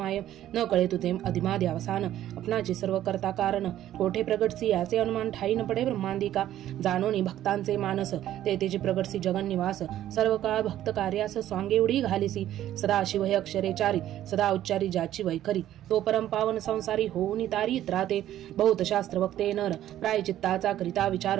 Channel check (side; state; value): left; quieter; 12.5 dB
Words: न कळे तुझे अधिमादी अवसान अपनाचे सर्व करता कारण कोठे प्रगटसी याचे अनुमान ठाई न पडे ब्रह्मांदिका जाणोनी भक्तांचे मानस ते तेचे प्रगटसी जगन निवास सर्व काळ भक्त कार्यास स्वांगे उडी घालिसी सदा शिव हे अक्षरेचारी सदा उच्चारी ज्याची वैखरी तो परम पावन संसारी होऊन तारी त्राते बहुत शास्त्र वक्ते नर प्रायचित्ताचा करिता विचार